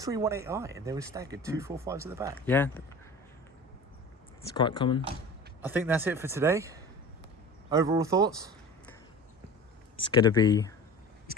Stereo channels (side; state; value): both; normal; correlation 0.37